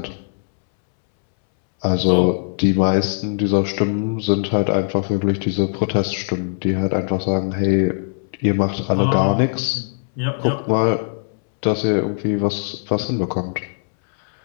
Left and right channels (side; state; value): right; silent; 66 dB below the other